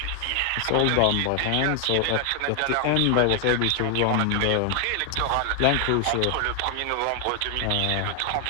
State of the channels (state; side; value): different; both; correlation 0.00